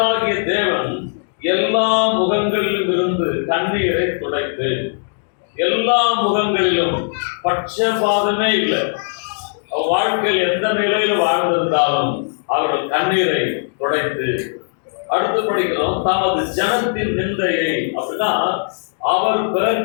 தேவன் எல்லா முகங்களிலும் இருந்து கண்ணீரை துடைத்து, எல்லா முகங்களிலும் பட்சபாதமே இல்லை. அவர் வாழ்க்கையில் எந்த நிலையில் வாழ்ந்திருந்தாலும் அவர்கள் கண்ணீரை துடைத்து. அடுத்து படிக்கிறோம், தமது ஜனத்தின் நிந்தையை, அப்படின்னா அவர்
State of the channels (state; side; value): silent; right; digital silence